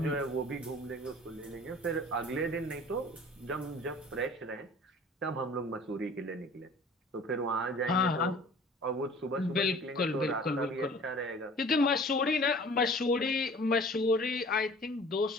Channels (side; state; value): both; normal; correlation 0.47